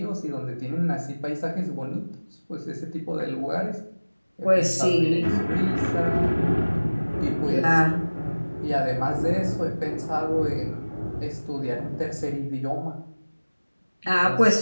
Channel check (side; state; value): both; inverted; correlation -1.00